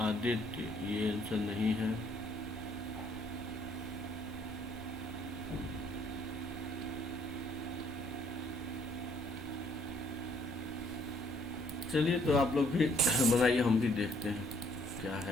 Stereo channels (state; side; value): normal; both; correlation 0.65